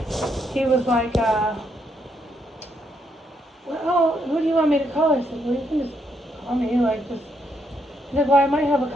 he was like, well, who do you want me to call? I said, well, you can just call me, like, just. He said, well, I might have a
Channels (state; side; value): normal; both; correlation 0.76